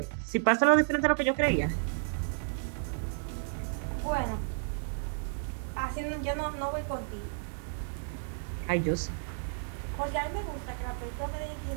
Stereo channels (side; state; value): left; silent; digital silence